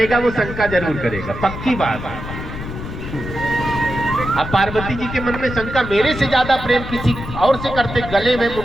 वो शंका जरूर करेगा, पक्की बात है। अब पार्वती जी के मन में शंका, मेरे से ज्यादा प्रेम किसी और से करते, गले में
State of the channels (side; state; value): left; noise; rumble, 9 dB below the sound